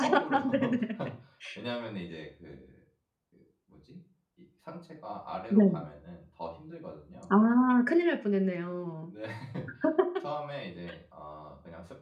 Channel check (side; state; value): both; identical; correlation 1.00